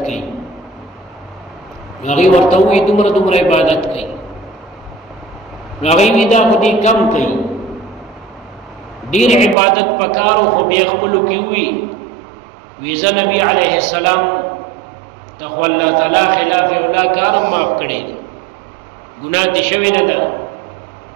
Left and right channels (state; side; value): drops out; left; at 9.6 s